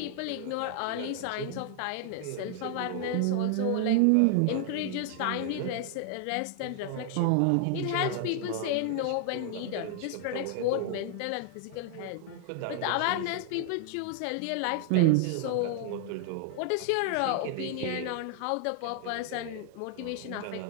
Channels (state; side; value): different; both; correlation 0.00